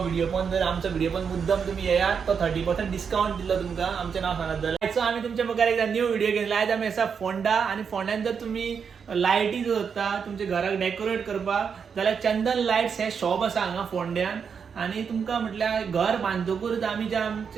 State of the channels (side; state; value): left; quieter; 6.5 dB